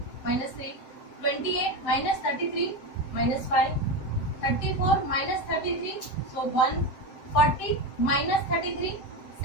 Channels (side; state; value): right; late; 7.6 ms